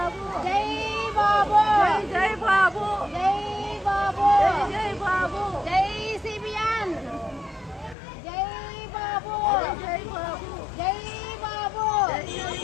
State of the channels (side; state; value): right; drops out; at 8.0 s